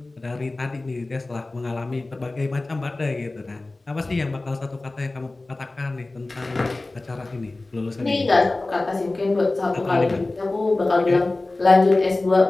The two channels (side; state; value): right; quieter; 3.0 dB